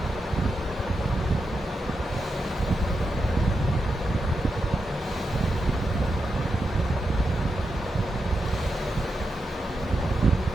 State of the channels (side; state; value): both; normal; correlation 0.87